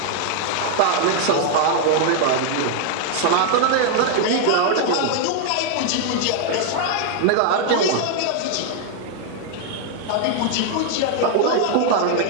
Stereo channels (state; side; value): different; both; correlation 0.00